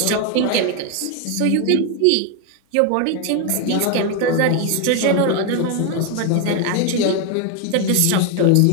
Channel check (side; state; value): both; different; correlation 0.01